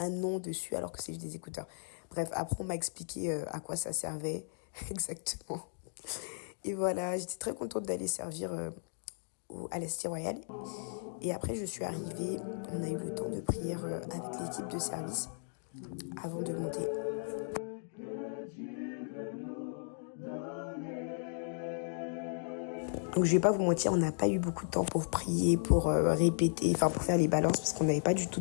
nom dessus alors que c'est juste des écouteurs. Bref, après on m'a expliqué à quoi ça servait exactement. Et voilà, j'étais très contente d'aller servir à la Cité Royale. Et après je suis arrivée, on a eu le temps de prier avec l'équipe de service avant de monter. Donc je vais pas vous mentir, on n'a pas eu beaucoup de temps pour prier, pour répéter, enfin pour faire les balances parce qu'on n'avait pas du tout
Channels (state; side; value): silent; right; digital silence